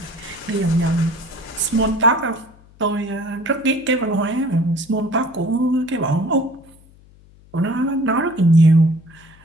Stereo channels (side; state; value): left; noise; hum, 26 dB below the sound